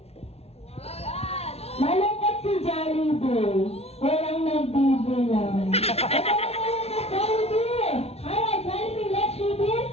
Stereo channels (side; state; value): right; late; 0.30 ms